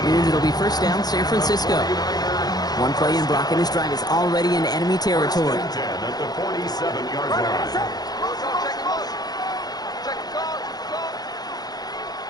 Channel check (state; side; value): late; right; 0.19 ms